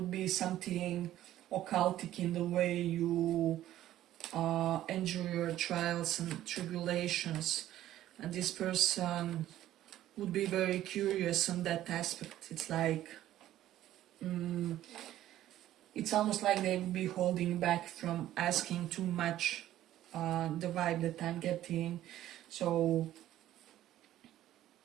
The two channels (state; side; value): quieter; left; 13.3 dB